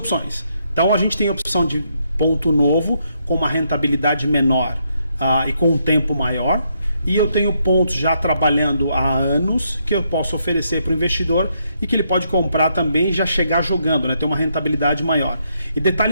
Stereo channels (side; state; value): both; inverted; correlation -0.76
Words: Então, a gente tem a opção de ponto novo com uma rentabilidade menor e com um tempo maior. E eu tenho pontos já trabalhando há anos que eu posso oferecer para o investidor e que ele pode comprar também e já chegar jogando, né? Ter uma rentabilidade maior. E